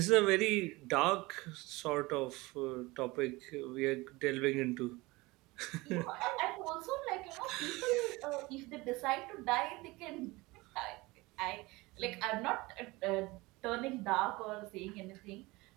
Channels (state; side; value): quieter; left; 22.1 dB